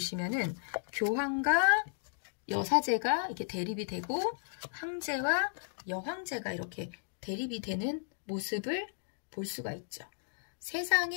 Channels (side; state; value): right; silent; digital silence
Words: 교황과 여사제가 이렇게 대립이 되고 황제와 여황제가 이렇게 대립이 되는 모습을 볼 수가 있죠.